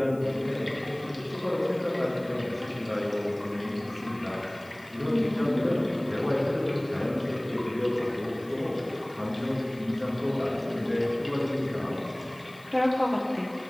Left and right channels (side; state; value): left; noise; hiss, 26 dB below the sound